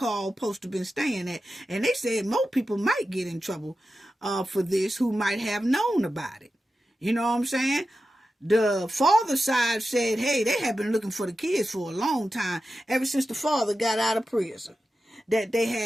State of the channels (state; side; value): normal; both; correlation 0.92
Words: supposed to have been staying at. And they said more people might get in trouble for this who might have known about it. You know what I'm saying? The father side said, hey, they have been looking for the kids for a long time, ever since the father got out of prison. That they